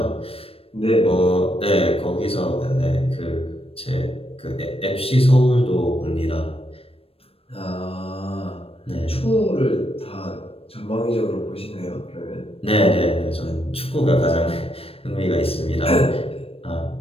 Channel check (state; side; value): late; right; 0.28 ms